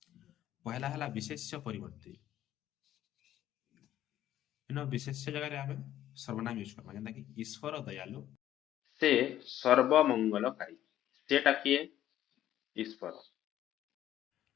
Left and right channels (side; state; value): right; quieter; 12.4 dB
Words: ପहला ହେଲା ବିଶେଷ୍ୟ ପରିବର୍ତ୍ତେ। ବିଶେଷ୍ୟ ଜାଗାରେ ଆମେ ସର୍ବନାମ ୟୁଜ କରମା। ଯେନ୍ତା କି ଈଶ୍ୱର ଦୟାଳୁ, ସେ ସର୍ବମଙ୍ଗଳକାରୀ। ସେଟା କିଏ? ଈଶ୍ୱର।